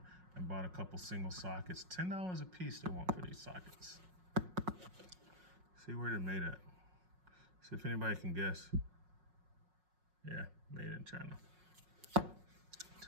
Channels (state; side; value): late; left; 5.5 ms